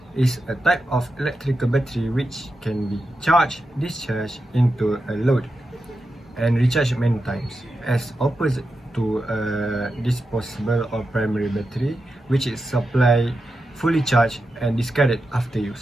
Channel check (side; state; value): both; normal; correlation 0.89